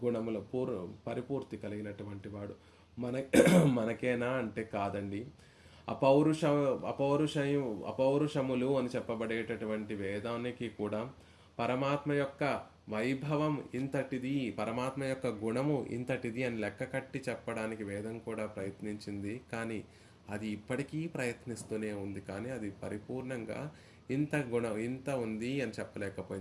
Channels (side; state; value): both; identical; correlation 1.00